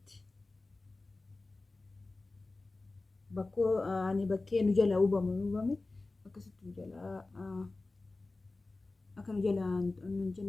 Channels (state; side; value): quieter; right; 3.3 dB